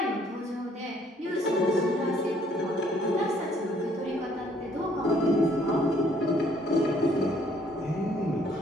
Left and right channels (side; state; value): both; normal; correlation 0.63